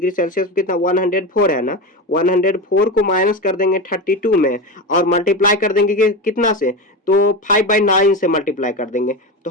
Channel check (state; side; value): normal; both; correlation 0.20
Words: सेल्सियस कितना 104 है ना, 104 को माइनस कर देंगे 32 में और मल्टीप्लाई कर देंगे कितना से, तो 5/9 से मल्टीप्लाई कर देंगे। तो